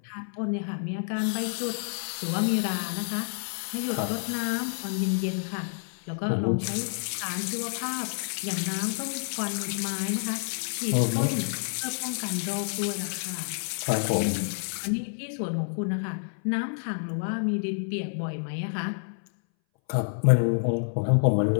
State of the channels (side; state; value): right; silent; 59 dB below the other